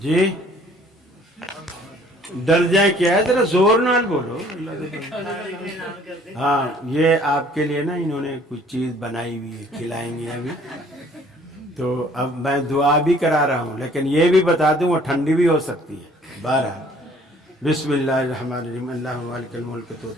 डर जाए क्या है, जरा जोर नाल बोलो। हाँ, ये आपके लिए ना इन्होंने कुछ चीज बनाई हुई है, खिलाएंगे अभी। तो अब मैं दुआ भी करा रहा हूँ, लेकिन ये भी बता दूँ वो ठंडी भी हो सकती है। 12 बिस्मिल्लाहिर्रहमानिर्रहीम अल्लाहुम्मा मालिकल मुल्क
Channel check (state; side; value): normal; both; correlation 0.56